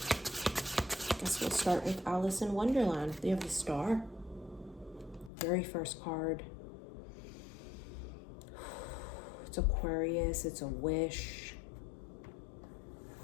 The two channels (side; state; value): right; drops out; at 5.3 s